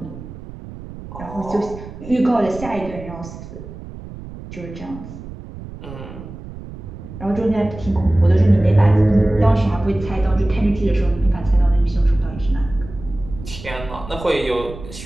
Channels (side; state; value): right; noise; rumble, 13 dB below the sound